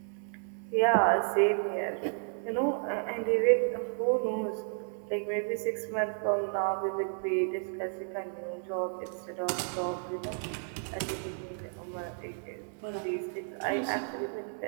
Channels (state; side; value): silent; left; 56 dB below the other